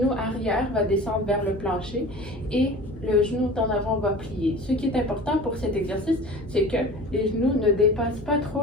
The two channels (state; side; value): normal; both; correlation 0.38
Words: arrière va descendre vers le plancher et le genou en avant va plier. Ce qui est important pour cet exercice, c'est que les genoux ne dépassent pas trop